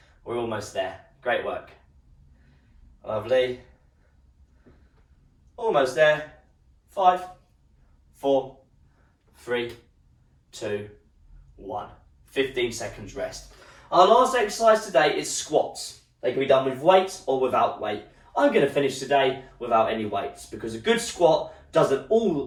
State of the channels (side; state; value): both; identical; correlation 1.00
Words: We're almost there. Great work. Lovely. Almost there. 5, 4, 3, 2, 1. 15 seconds rest. Our last exercise today is squats. They can be done with weights or without weight. I'm going to finish today without any weights because a good squat doesn't